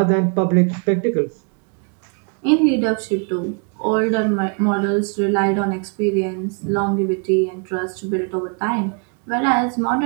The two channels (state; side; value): quieter; left; 39.7 dB